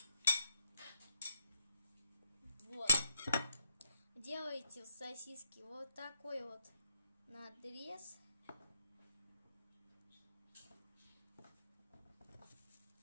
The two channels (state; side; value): inverted; both; correlation -0.79